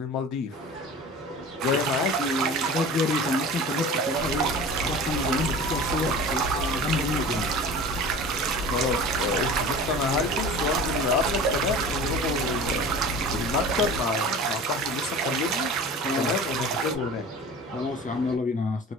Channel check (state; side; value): normal; both; correlation 0.38